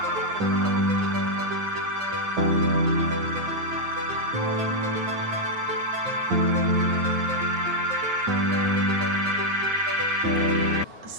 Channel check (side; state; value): left; late; 9.4 ms